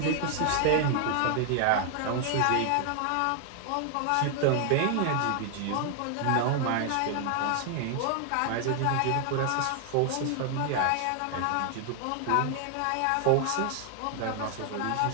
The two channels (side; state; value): both; different; correlation 0.00